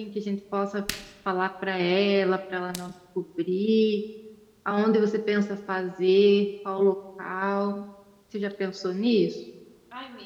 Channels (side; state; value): both; identical; correlation 1.00